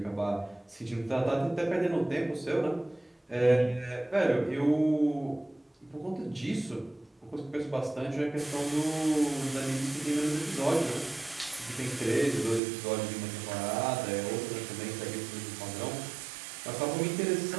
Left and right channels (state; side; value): drops out; left; at 12.6 s